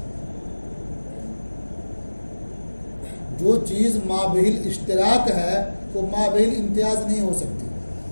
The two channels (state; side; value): inverted; both; correlation -1.00